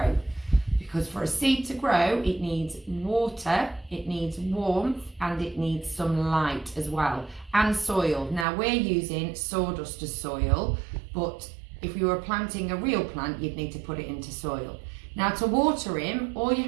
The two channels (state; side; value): drops out; left; at 8.5 s